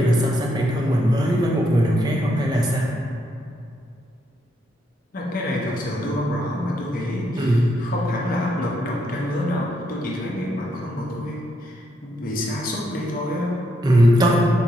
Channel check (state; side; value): normal; both; correlation 0.78